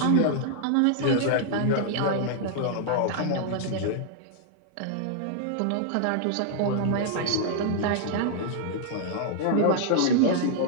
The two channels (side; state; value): both; different; correlation -0.01